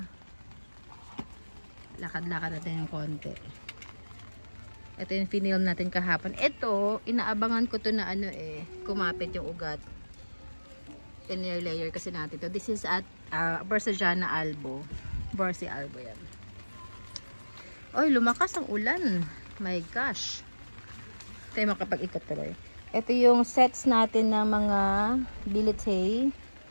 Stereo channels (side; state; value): both; inverted; correlation -1.00